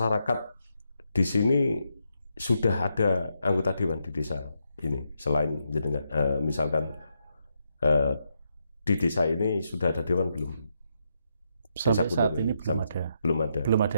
di sini sudah ada anggota dewan di desa ini selain jenengan, misalkan di desa ini sudah ada dewan belum? Sampai saat ini belum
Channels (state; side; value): inverted; both; correlation -0.81